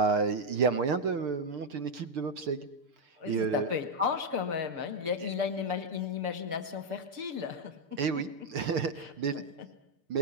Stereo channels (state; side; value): late; left; 6.8 ms